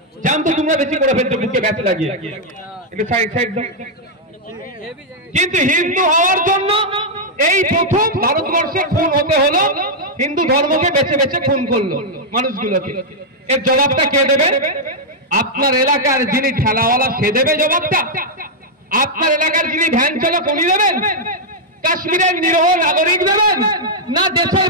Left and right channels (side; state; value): both; normal; correlation -0.04